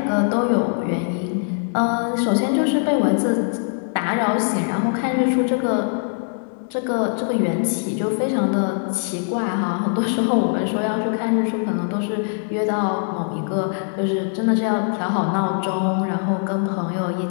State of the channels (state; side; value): silent; right; 64 dB below the other